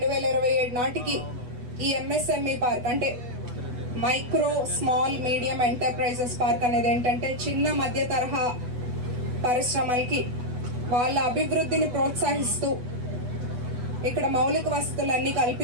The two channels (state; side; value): late; left; 8.2 ms